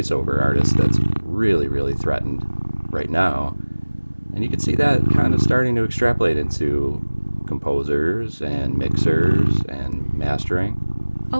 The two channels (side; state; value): both; inverted; correlation -1.00